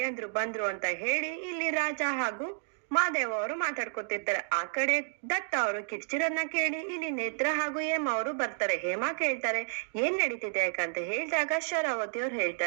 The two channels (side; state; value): left; silent; digital silence